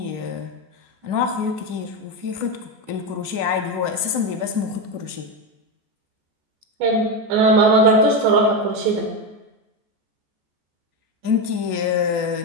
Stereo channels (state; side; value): late; left; 14 ms